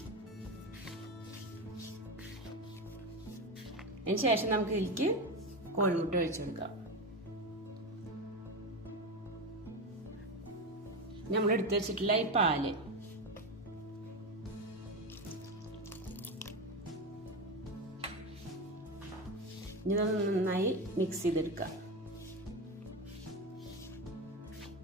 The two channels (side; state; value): both; normal; correlation 0.17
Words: അതിന് ശേഷം നമുക്ക് ഇതിലേക്ക് കോഴിമുട്ട ഒഴിച്ചു കൊടുക്കാം. നമ്മൾ എടുത്തു വെച്ചിട്ടുള്ള ഈ പാല് ഇതൊന്ന് നന്നായി മിക്സ് ചെയ്തെടുക്കാം.